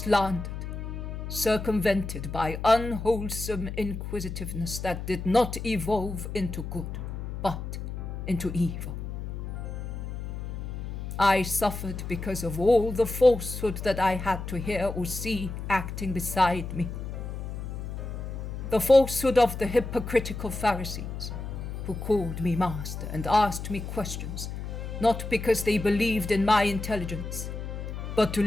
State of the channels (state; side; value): noise; left; hum, 6 dB below the sound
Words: circumvented by unwholesome inquisitiveness that did not evolve into good, but into evil. I suffered because of all the falsehood that I had to hear or see acting beside me. The falsehood of the hypocritical Pharisees, who called me master and asked me questions, not because they believed in my intelligence, but to